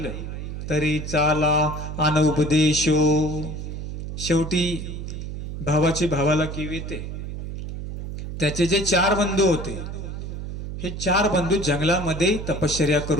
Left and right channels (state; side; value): noise; right; hum, 7 dB below the sound